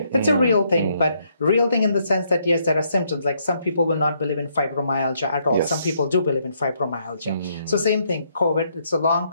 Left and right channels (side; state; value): both; inverted; correlation -0.73